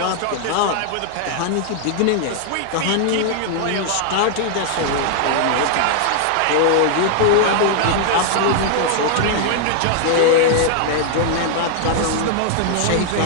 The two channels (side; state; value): both; different; correlation 0.00